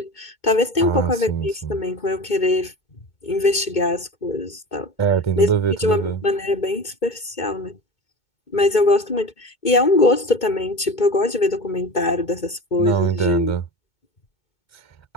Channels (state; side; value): late; right; 2.2 ms